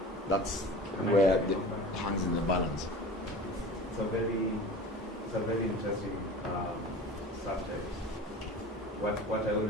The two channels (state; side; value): normal; both; correlation 0.38